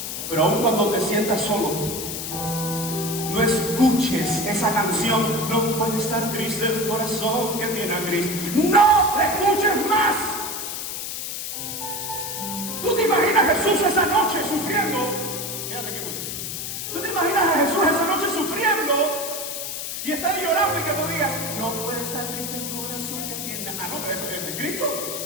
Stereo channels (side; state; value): left; noise; hiss, 5 dB below the sound